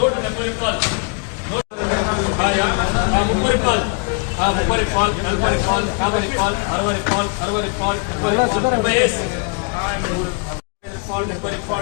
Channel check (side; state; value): right; quieter; 37.8 dB